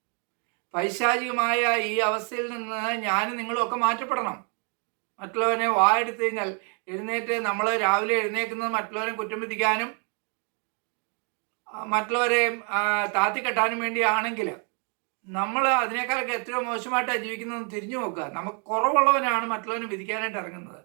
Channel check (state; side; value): quieter; left; 38.5 dB